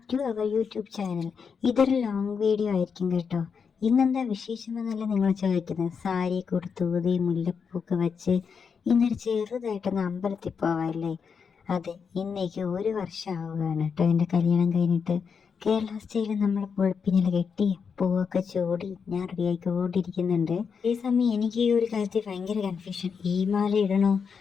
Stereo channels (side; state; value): right; quieter; 6.1 dB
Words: to our YouTube channel. ഇതൊരു long video ആയിരിക്കും കേട്ടോ. ഇന്നെന്താ വിശേഷമെന്നല്ല നിങ്ങൾ ചോദിക്കുന്നത്. സാരി കൊടുത്തൂതി മുല്ലപ്പൂക്ക് വെച്ച് ഇന്നൊരു ചെറുതായിട്ടൊന്ന് അമ്പലത്തിൽ പോവാല്ലേ. അതെ, ഇന്നേക്ക് ഒരു വർഷം ആവുകയാണ് കേട്ടോ എൻ്റെ കല്യാണം കഴിഞ്ഞിട്ട്. കേരള സ്റ്റൈലിൽ നമ്മൾ പൊളിപ്പിനില കെട്ടി പൂവൊക്കെ ചൂടി ഞാൻ റെഡിയായിക്കൊണ്ടിരിക്കുന്നുണ്ട്. ഈ സമയം എനിക്ക് ഈ ഒരു കാര്യത്തിൽ ഭയങ്കര കൺഫ്യൂഷൻ. ഈ മാല ഇടണോ